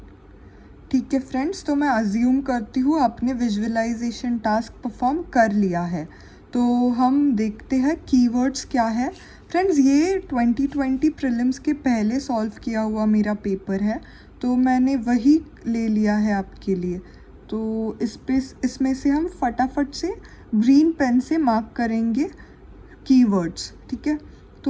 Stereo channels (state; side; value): identical; both; correlation 1.00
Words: ठीक है फ्रेंड्स। तो मैं अज्यूम करती हूँ आपने विजुअलाइजेशन टास्क परफॉर्म कर लिया है। तो हम देखते हैं कीवर्ड्स क्या है। फ्रेंड्स, ये 2020 प्रीलिम्स के पहले सॉल्व किया हुआ मेरा पेपर है, तो मैंने वही ले लिया है आपके लिए। तो इसमें से हम फटाफट से ग्रीन पेन से मार्क करेंगे कीवर्ड्स, ठीक है।